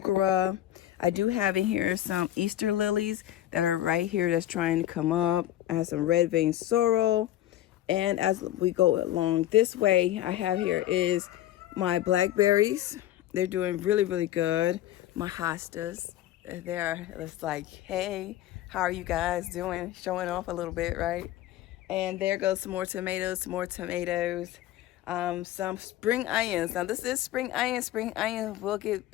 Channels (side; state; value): right; quieter; 13.5 dB